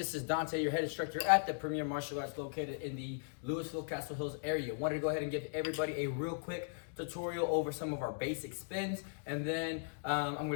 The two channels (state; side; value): silent; right; digital silence